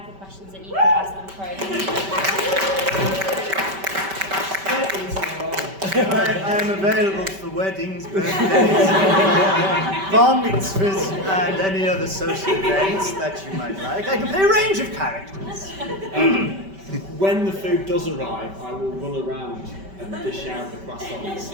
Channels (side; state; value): left; late; 5.2 ms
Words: of questions that you can ask them for. I am available for weddings, birthdays, bar mitzvahs, and any other social events that you might like. I can play a range of characters. When the food does arrive, I will run around and dish out the croissants.